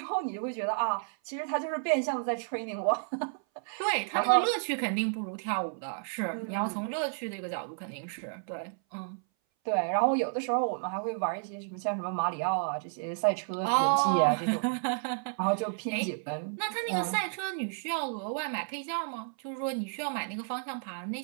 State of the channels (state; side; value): silent; left; 57 dB below the other